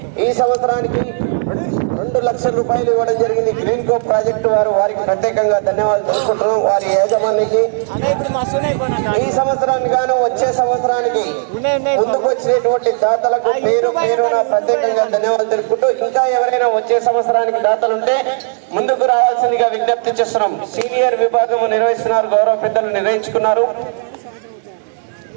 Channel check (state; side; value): silent; left; digital silence